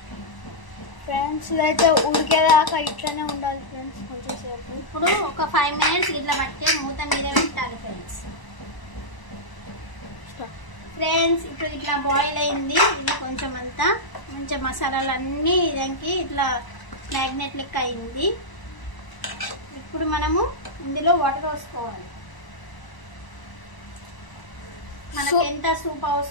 ఫ్రెండ్స్ ఇదైతే ఉడికేదాకా ఇట్లానే ఉండాలి ఫ్రెండ్స్. కొంచెంసేపు ఇప్పుడు ఒక 5 మినిట్స్ ఇట్లా పట్టే మూత మీద పెట్టాలి ఫ్రెండ్స్. ఇప్పుడు ఇట్లా బాయిల్ అయింది. ఇది కొంచెం అంతా మంచిగా మసాలాలు అన్నీ ఇదానికి ఇట్లా మ్యాగ్నెట్ లెక్క అయింది. ఇప్పుడు మనము ఇందులో వాటర్ పోసుకోవాలి. మనకి ఎంత సూప్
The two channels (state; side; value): late; right; 1.0 ms